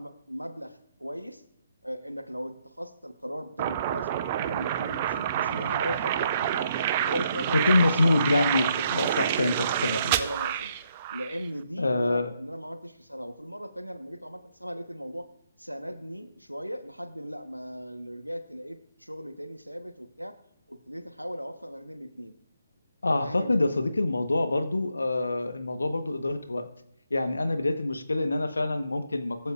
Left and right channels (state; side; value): inverted; both; correlation -0.76